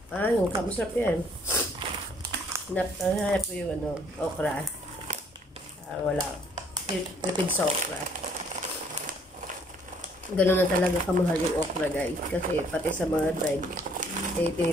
Yung masarap yan. Hinahanap ko yung ano, okra. Wala. Lipid sa okra. Ganun na talaga kamahal yung okra, guys. Kasi pati sa mga dried, eh,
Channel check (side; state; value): both; normal; correlation 0.62